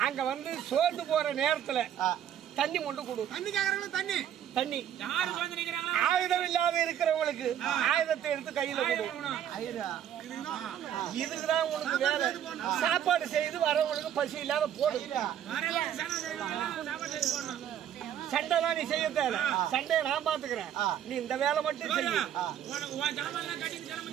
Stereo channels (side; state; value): left; quieter; 10.1 dB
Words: அங்க வந்து சோர்ந்து போற நேரத்துல தண்ணி கொண்டு கொடு. தண்ணி தண்ணி ஆயுதம் இல்லாத இருக்கிறவங்களுக்கு ஆயுதத்தை எடுத்து கையில கொடு. இதுக்குதான் உனக்கு வேலை. சாப்பாடு செய்து வரவங்களுக்கு பசி இல்லாத போடு. சண்டை தான் நீ செய்ய தேவை. சண்டையை நான் பாத்துக்கிறேன். நீ இந்த வேலை மட்டும் செய்ய.